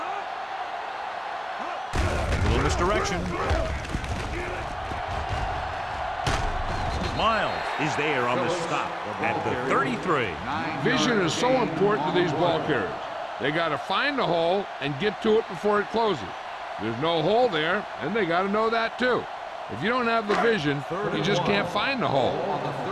A little misdirection. Miles is there on the stop at the 33. Vision is so important to these ball carriers. They got to find the hole and get to it before it closes. There's no hole there, and they got to know that too. If you don't have the vision, you just can't find the hole. On the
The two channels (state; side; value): identical; both; correlation 1.00